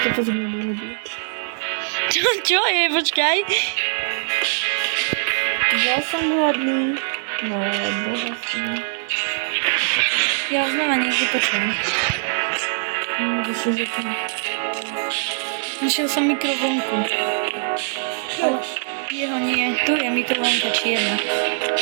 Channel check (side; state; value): left; silent; digital silence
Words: to zmenilo. Čo je? Počkaj. Ja som hladný. No, boha som. Ja už znova niekde počujem. Našiel som mikrovlnku. Jeho nie. Tu je mikrovlnka čierna.